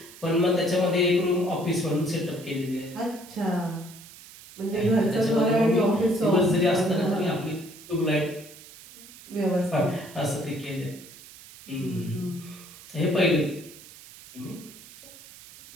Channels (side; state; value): right; noise; hiss, 19 dB below the sound